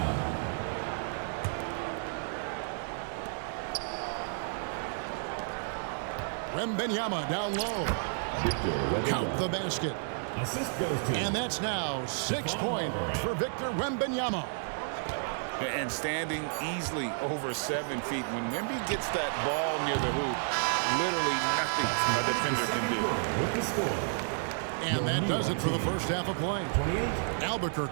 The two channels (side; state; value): left; silent; digital silence